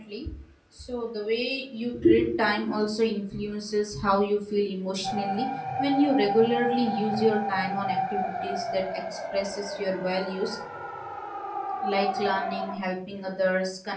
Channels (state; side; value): identical; both; correlation 1.00